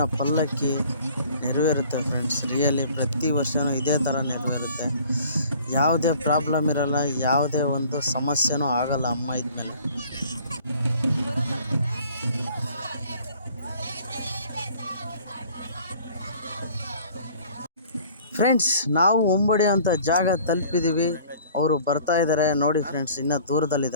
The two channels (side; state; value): both; inverted; correlation -0.51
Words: ಪಲ್ಲಕ್ಕಿ ನೆರವೇರುತ್ತೆ ಫ್ರೆಂಡ್ಸ್. ರಿಯಲಿ ಪ್ರತಿ ವರ್ಷವೂ ಇದೇ ಥರ ನೆರವೇರುತ್ತೆ. ಯಾವುದೇ ಪ್ರಾಬ್ಲಮ್ ಇರಲ್ಲ, ಯಾವುದೇ ಒಂದು ಸಮಸ್ಯೆನೂ ಆಗಲ್ಲ ಅಮ್ಮ ಇದ್ಮೇಲೆ. ಫ್ರೆಂಡ್ಸ್, ನಾವು ಒಂಬಡಿ ಅಂತ ಜಾಗ ತಲುಪಿದ್ದೀವಿ. ಅವರು ಬರ್ತಾ ಇದ್ದಾರೆ ನೋಡಿ ಫ್ರೆಂಡ್ಸ್, ಇನ್ನೂ